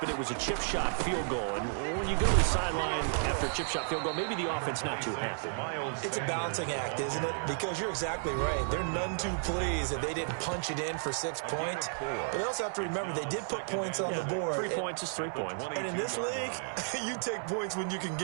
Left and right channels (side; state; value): left; silent; digital silence